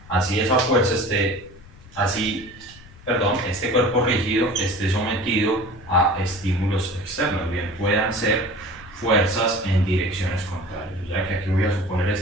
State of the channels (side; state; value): left; noise; rumble, 22 dB below the sound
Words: Así esa fuerza este cuerpo rígido esté sometido a estímulos externos, bien puedan ser fuerzas en direcciones contrarias. O sea que aquí voy a suponer